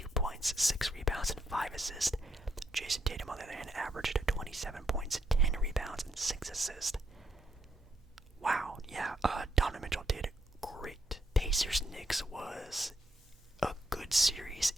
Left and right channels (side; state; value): both; normal; correlation 0.77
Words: points, 6 rebounds, and 5 assists. Jason Tatum, on the other hand, averaged 27 points, 10 rebounds, and 6 assists. Wow, yeah, Donovan Mitchell did great. Pacers-Knicks was a good series.